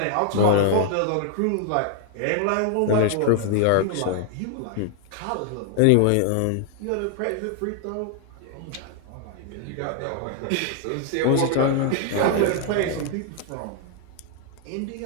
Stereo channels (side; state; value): both; different; correlation 0.00